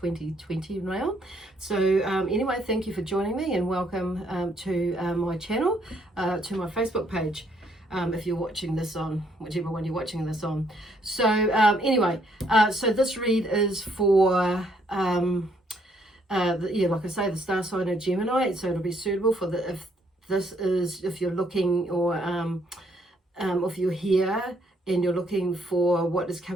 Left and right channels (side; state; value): both; normal; correlation 0.69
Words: now. So anyway, thank you for joining me, and welcome to my channel, to my Facebook page. If you're watching this on whichever one you're watching this on. So anyway, so this read is for like I say, the star sign of Gemini, so it'll be suitable for if you're looking, or if you're here and you're looking for what is